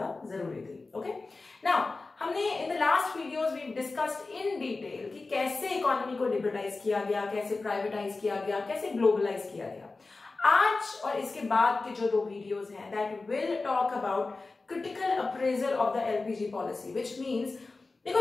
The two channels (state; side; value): quieter; right; 3.6 dB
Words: जरूरी थी. ओके, नाउ हमने in the last videos we discussed in detail कि कैसे इकोनॉमी को लिबरलाइज किया गया, कैसे प्राइवेटाइज किया गया, कैसे ग्लोबलाइज किया गया. आज और इसके बाद के जो 2 वीडियोस हैं that will talk about critical appraisal of the LPG policy, which means देखो